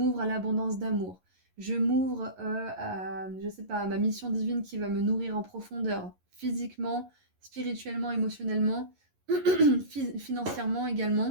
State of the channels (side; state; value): left; late; 11 ms